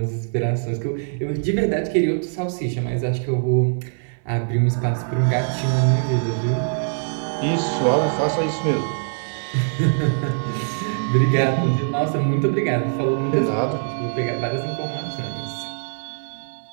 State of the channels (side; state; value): left; silent; 64 dB below the other